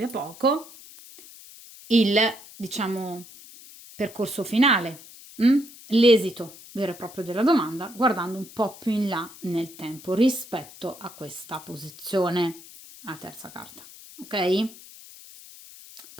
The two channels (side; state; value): left; noise; hiss, 19 dB below the sound